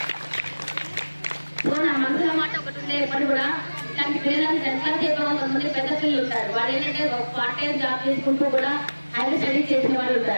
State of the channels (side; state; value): both; inverted; correlation -1.00